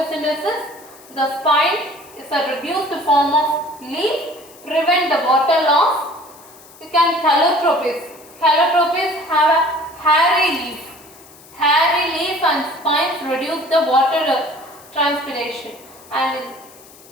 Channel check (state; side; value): noise; left; hiss, 23 dB below the sound